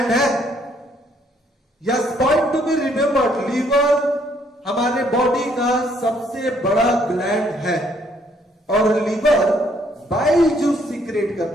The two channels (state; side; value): normal; both; correlation 0.67